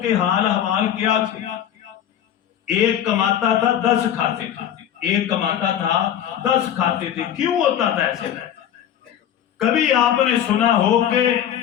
کے حال احوال کیا تھے؟ ایک کماتا تھا 10 کھاتے تھے، ایک کماتا تھا 10 کھاتے تھے۔ کیوں ہوتا تھا ایسے؟ کبھی آپ نے سنا ہو کہ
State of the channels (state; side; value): quieter; right; 10.2 dB